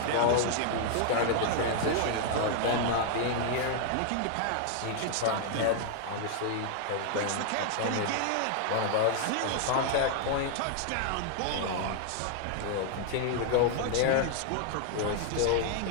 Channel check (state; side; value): different; both; correlation 0.00